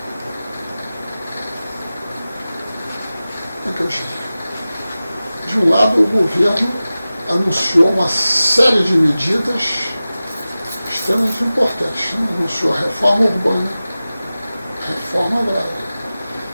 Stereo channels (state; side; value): inverted; both; correlation -0.96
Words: é que eu diria? De um lado, o governo anunciou uma série de medidas extremamente importantes, né? Anunciou a reforma urbana, reforma agrária,